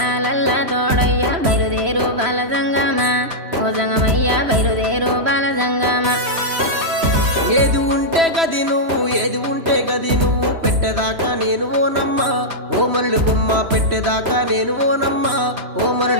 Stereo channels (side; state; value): left; late; 3.0 ms